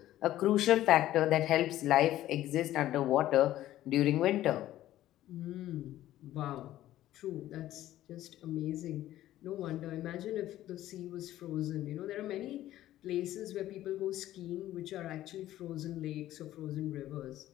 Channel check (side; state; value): right; quieter; 13.9 dB